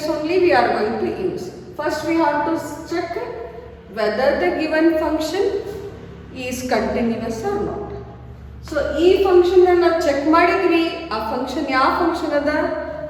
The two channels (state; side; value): identical; both; correlation 1.00